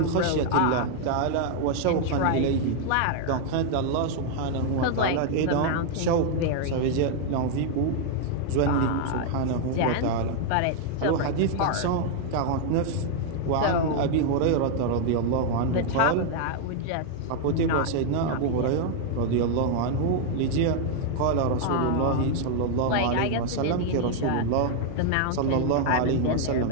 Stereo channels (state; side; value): different; both; correlation 0.00